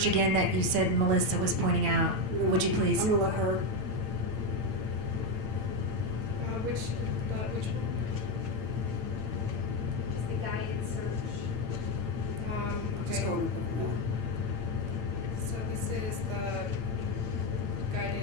again that you said Melissa was pointing out? Would you please? I'm going to let her. Which just the guided search. Just go with it. So this is the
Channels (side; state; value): left; late; 8.9 ms